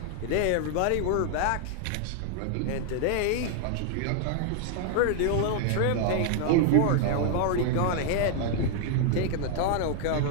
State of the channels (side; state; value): both; different; correlation 0.00